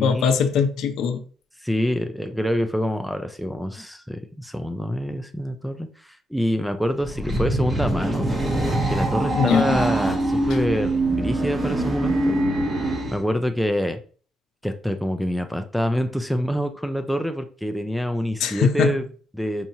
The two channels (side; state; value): both; normal; correlation 0.83